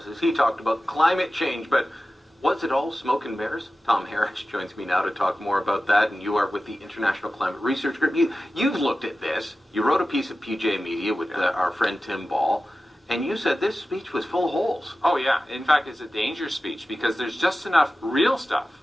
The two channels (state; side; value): normal; both; correlation 0.94